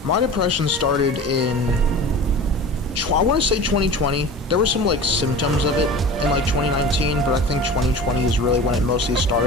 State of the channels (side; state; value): both; normal; correlation 0.36